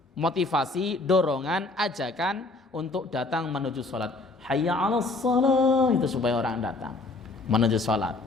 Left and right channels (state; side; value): quieter; right; 3.2 dB